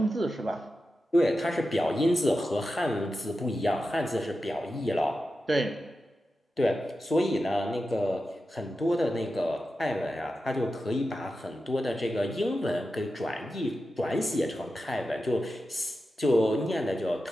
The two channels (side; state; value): both; normal; correlation 0.91